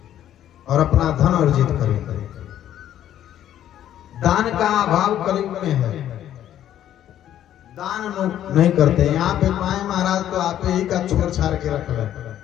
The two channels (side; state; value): right; quieter; 11.3 dB